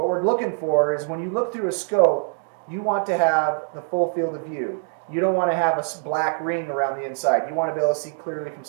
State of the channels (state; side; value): silent; left; 59 dB below the other